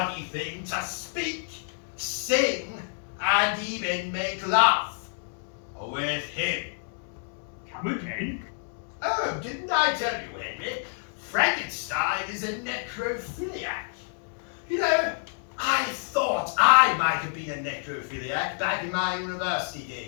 thing to speak, sing, and even make love with him. Come again? Oh, didn't I tell you, Henry? Frankenstein is a necrophiliac. You know, I thought I might have been a necrophiliac back in my university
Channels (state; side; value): silent; right; digital silence